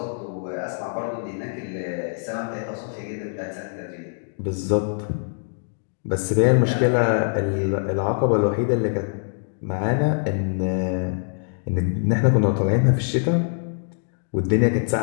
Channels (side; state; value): right; silent; digital silence